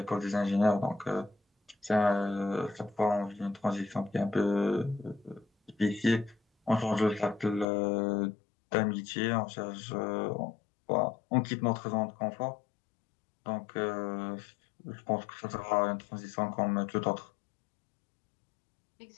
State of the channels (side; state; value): right; drops out; at 7.7 s